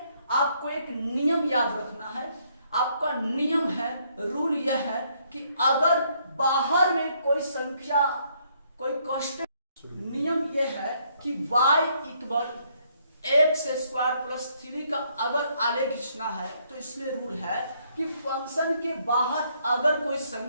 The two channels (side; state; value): both; inverted; correlation -0.70